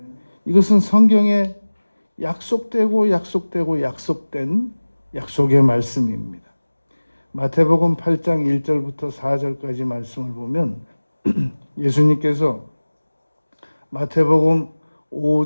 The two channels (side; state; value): both; inverted; correlation -1.00